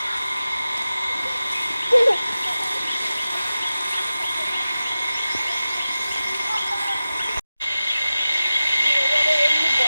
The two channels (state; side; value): inverted; both; correlation -0.95